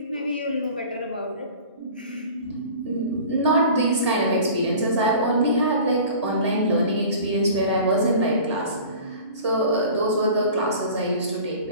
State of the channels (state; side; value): inverted; both; correlation -0.42